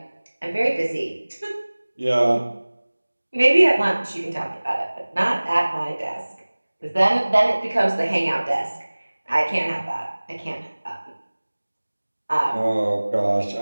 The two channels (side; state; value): both; inverted; correlation -1.00